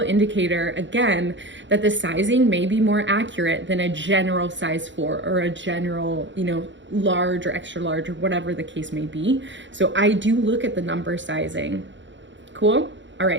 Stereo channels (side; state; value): left; late; 0.54 ms